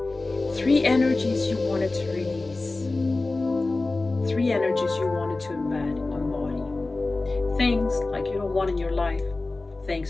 3 energies you wanted to release, 3 energies you wanted to embed on body. Things like you don't want in your life.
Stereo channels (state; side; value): quieter; right; 3.3 dB